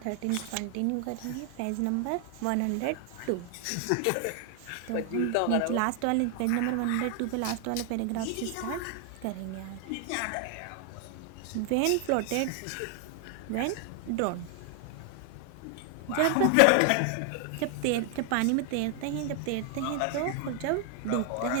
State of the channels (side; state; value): both; different; correlation 0.00